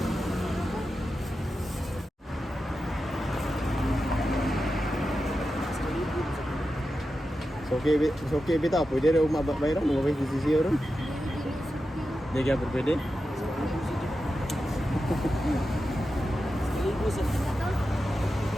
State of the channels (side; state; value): both; normal; correlation 0.90